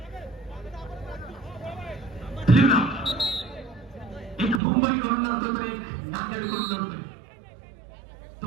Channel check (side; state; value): left; drops out; at 4.6 s